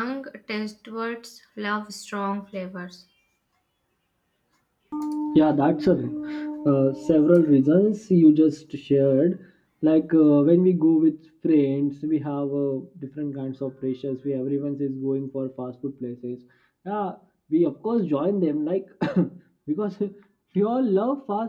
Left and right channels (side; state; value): both; identical; correlation 1.00